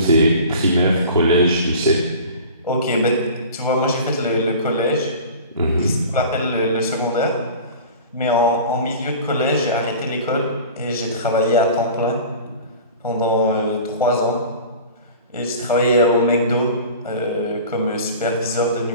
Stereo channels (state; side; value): inverted; both; correlation -0.39